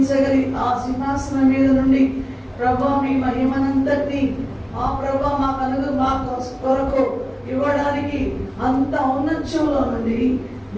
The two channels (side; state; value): both; identical; correlation 1.00